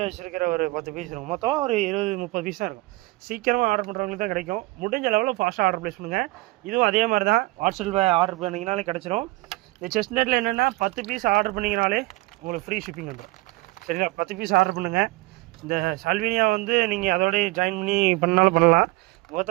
வச்சுருக்கிற ஒரு 10 பீஸ் இருக்கும். மொத்தம் ஒரு 20-30 பீஸ் தான் இருக்கும். சீக்கிரமாக ஆர்டர் பண்ணுறவங்களுக்கு தான் கிடைக்கும். முடிஞ்ச லெவலில் ஃபாஸ்ட்டாக ஆர்டர் ப்ளேஸ் பண்ணுங்கள். இதுவும் அதே மாதிரி தான். வாட்ஸ்அப்பில் ஆர்டர் பண்ணிங்கனாலே கிடச்சிரும். இந்த செஸ்னட்டில் என்னென்னா 10 பீஸ் ஆர்டர் பண்ணிங்கனாலே உங்களுக்கு ஃப்ரீ ஷிப்பிங் வந்துடும். சரிங்களா? 10 பீஸ் ஆர்டர் பண்ணுங்கள். இந்த சால்வினியா வந்து நீங்கள் அதோடய ஜாயின் பண்ணி பண்ணாலும் பண்ணலாம்.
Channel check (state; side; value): quieter; left; 21.9 dB